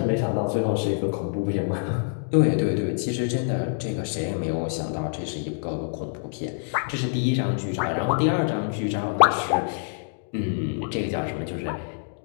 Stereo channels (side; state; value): right; silent; digital silence